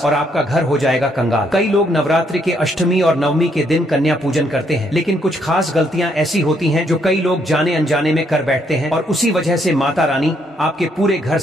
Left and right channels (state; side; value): normal; both; correlation 0.72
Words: और आपका घर हो जाएगा कंगाल। कई लोग नवरात्रि के अष्टमी और नवमी के दिन कन्या पूजन करते हैं, लेकिन कुछ खास गलतियां ऐसी होती हैं जो कई लोग जाने अनजाने में कर बैठते हैं और उसी वजह से माता रानी आपके पूरे घर